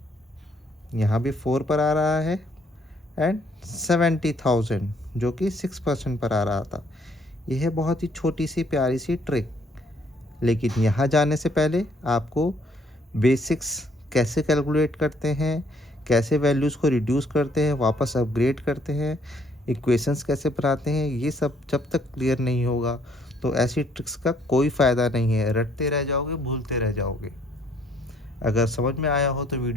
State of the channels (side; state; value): both; normal; correlation 0.65